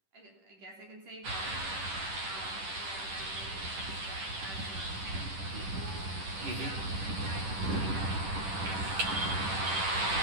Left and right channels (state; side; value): late; left; 10 ms